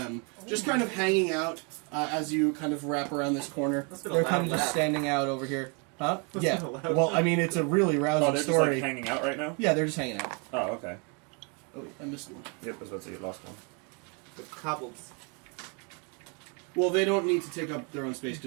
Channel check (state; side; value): quieter; left; 34.5 dB